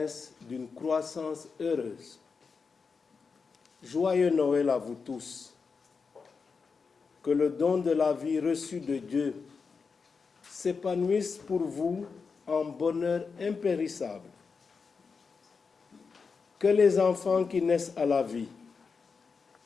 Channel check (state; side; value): quieter; right; 5.1 dB